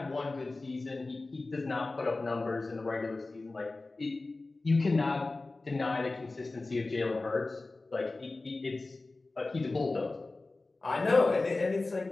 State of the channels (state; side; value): quieter; right; 3.3 dB